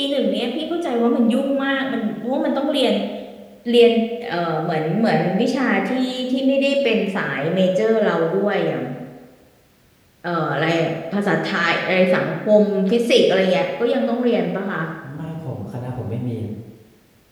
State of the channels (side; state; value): both; identical; correlation 1.00